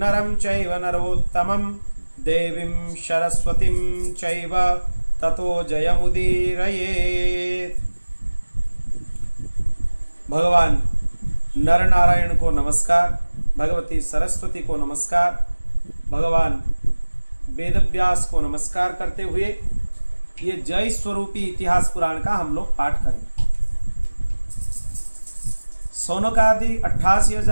चैव नरोत्तमं देवीं सरस्वतीं चैव ततो जयमुदीरयेत्। भगवान नर नारायण को नमस्कार, भगवती सरस्वती को नमस्कार, भगवान वेदव्यास को नमस्कार करते हुए ये जय स्वरूपी इतिहास पुराण का हम लोग पाठ करें। सौनकादि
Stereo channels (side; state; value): both; inverted; correlation -1.00